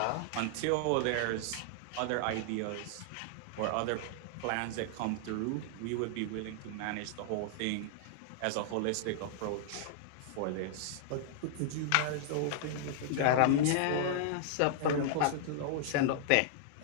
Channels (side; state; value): both; different; correlation -0.01